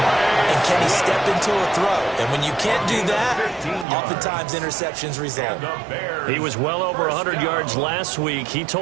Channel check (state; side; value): drops out; left; at 3.9 s